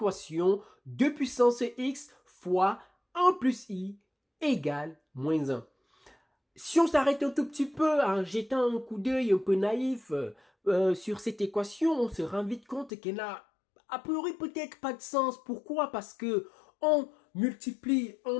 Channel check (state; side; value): drops out; right; at 12.9 s